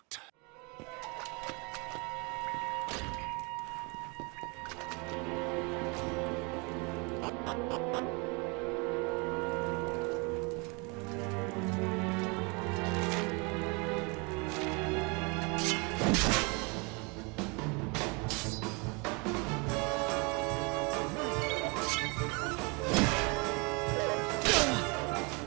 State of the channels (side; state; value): left; quieter; 30.6 dB